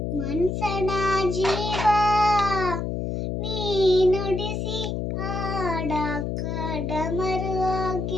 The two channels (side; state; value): left; noise; hum, 2 dB below the sound